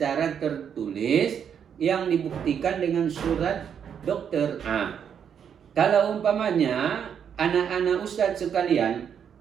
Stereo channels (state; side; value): quieter; left; 8.0 dB